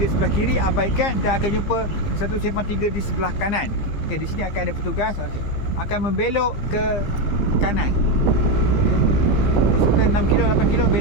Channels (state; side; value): late; right; 15 ms